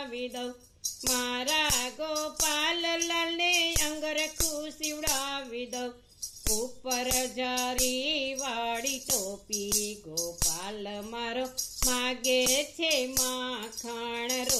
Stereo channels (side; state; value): both; identical; correlation 1.00